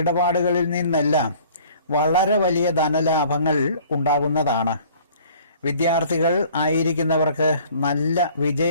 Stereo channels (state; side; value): inverted; both; correlation -0.52